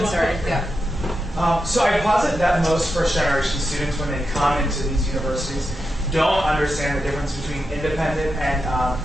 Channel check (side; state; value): both; normal; correlation 0.88